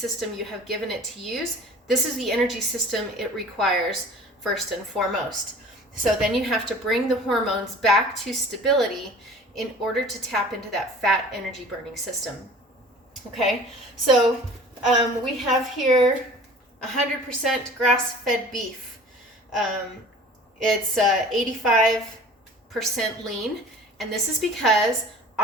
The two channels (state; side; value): normal; both; correlation 0.45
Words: you have given it to use, this is the energy system it requires first and foremost. So then you have to bring the hormones back to stability in order to tap into that fat energy burning system. Okay, so we have here 100% grass-fed beef. It's 85% lean, And this is because